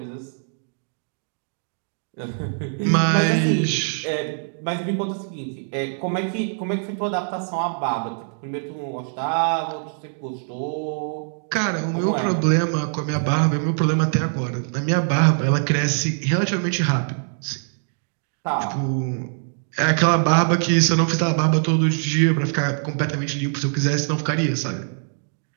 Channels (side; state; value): left; silent; 63 dB below the other